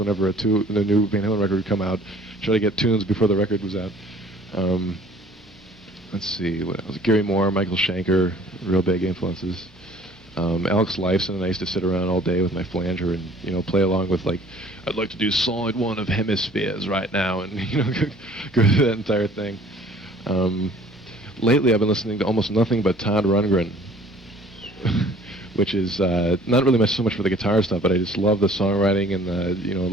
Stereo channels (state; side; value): normal; both; correlation 0.52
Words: the new Van Halen record would come out, try to get tunes before the record was out. Let's see, what else? Gary Moore, Michael Schenker, real big influences. Alex Lifeson and I used to sit around all day with my flanger and play along with like, I'd like to do side one of Hemispheres right now, and go through that entire thing. Lately I've been listening to almost nothing but Todd Rundgren, which is not really so much for the guitar stuff, but I just love the songwriting and